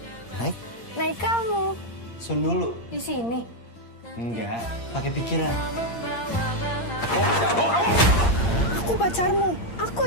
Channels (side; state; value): right; late; 8.6 ms